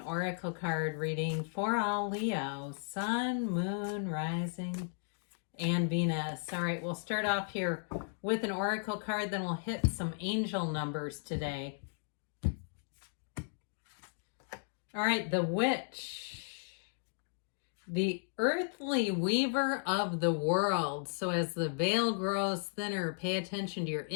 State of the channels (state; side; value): silent; right; digital silence